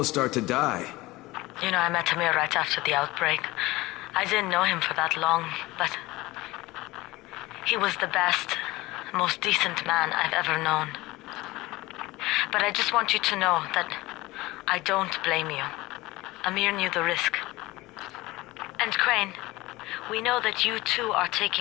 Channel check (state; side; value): quieter; right; 20.0 dB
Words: start to die. You know, I met Amir right after the outbreak. I didn't know him for that long, but he was the best, most decent man I've ever known. But I just want you to know that I don't blame you. Amir knew the risk. And Crane, we know that you too are